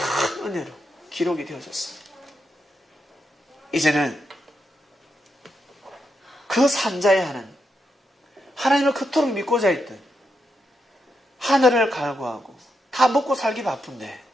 은혜로 기록이 되어졌습니다. 이제는 그 산자의 하나님을 그토록 믿고자 했던 하늘을 갈구하고 다 먹고 살기 바쁜데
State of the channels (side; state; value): both; normal; correlation 0.83